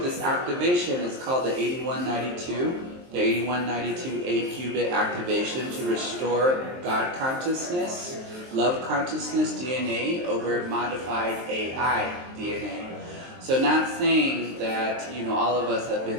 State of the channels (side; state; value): left; late; 23 ms